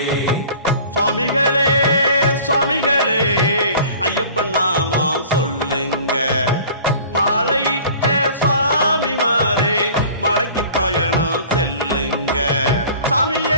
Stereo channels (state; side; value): inverted; both; correlation -0.45